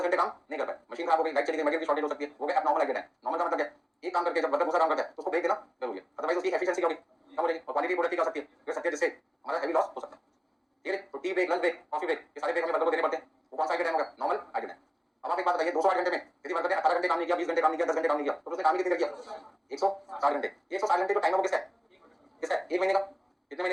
घंटे काम नहीं कर पाए, मशीन खराब हो गई, लाइट चली गई, मटेरियल की शॉर्टेज हो सकती है, वो गया नॉर्मल आइडियल टाइम। नॉर्मल का मतलब क्या? एक काम करके जब वर्कर दूसरा काम करता है तो उसको ब्रेक देना जरूरी है, अदरवाइज उसकी एफिशिएंसी क्या होगी? कम हो जाएगी और क्वालिटी प्रोडक्ट की क्या हो सकती है? गिर सकती है, जिससे हमारा हेवी लॉस हो सकता है, ठीक है? तो tea break, lunch break, coffee break, ये सारे ब्रेक हमें वर्कर को देने पड़ते हैं। वो कौन सा आइडियल टाइम होगा? Normal ideal time. अब आप एक बात बताइए 208 घंटे में यदि वर्कर ने 18 घंटे काम नहीं किया, 20 घंटे काम नहीं किया, 10 घंटे काम नहीं किया, तो उसने काम ही कितनी देर किया? 160 घंटे। 160 घंटे जो टाइम है वो किसका है? किसका है? एक महीने का। कितने महीने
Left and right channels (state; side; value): identical; both; correlation 1.00